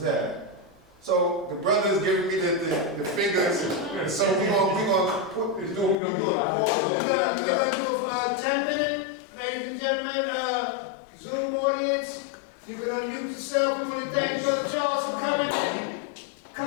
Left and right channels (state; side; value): drops out; right; at 6.0 s